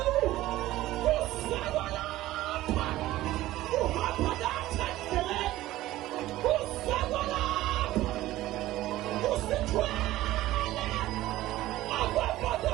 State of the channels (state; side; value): quieter; left; 15.8 dB